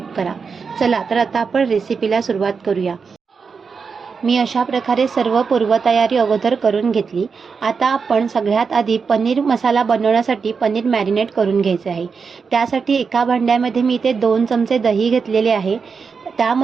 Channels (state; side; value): quieter; left; 5.4 dB